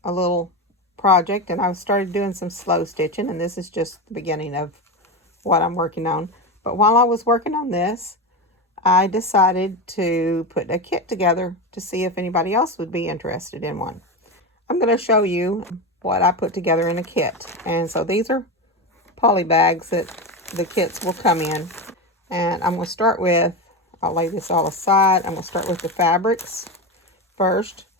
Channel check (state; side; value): normal; both; correlation 0.18